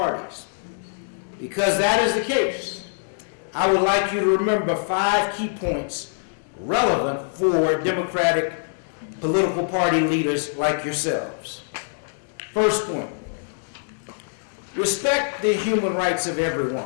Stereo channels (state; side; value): silent; right; digital silence